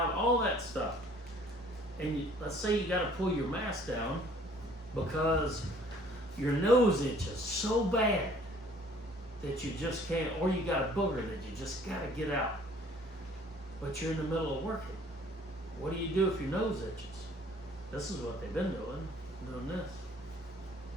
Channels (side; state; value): both; normal; correlation 0.56